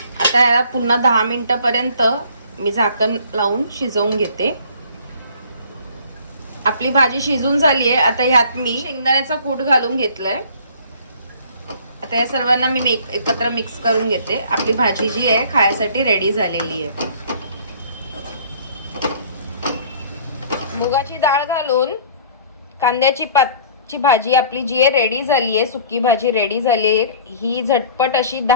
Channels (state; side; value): inverted; both; correlation -0.51